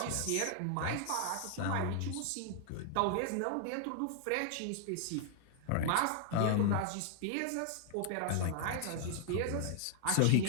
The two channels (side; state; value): both; different; correlation 0.00